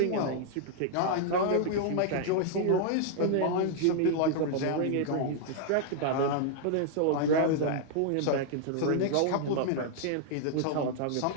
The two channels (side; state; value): both; different; correlation -0.01